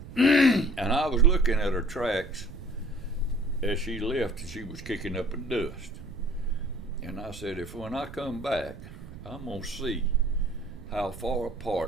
And I was looking at her tracks as she left, and she was kicking up a dust. And I said, if when I come back, I'm going to see how far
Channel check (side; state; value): right; noise; rumble, 14 dB below the sound